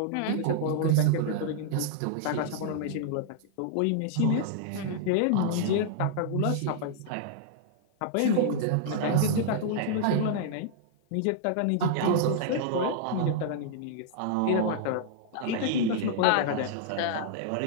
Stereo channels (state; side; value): different; both; correlation -0.01